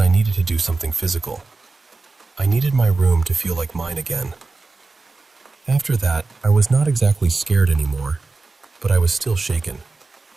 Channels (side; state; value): left; quieter; 3.7 dB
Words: needed to do something physical. I needed my room to feel like mine again. After that, I was not exactly scared anymore, but I was still shaken.